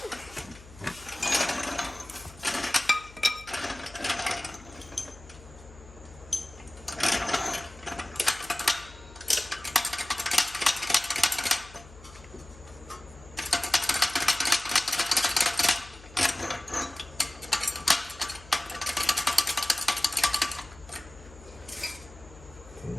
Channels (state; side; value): noise; left; hum, 20 dB below the sound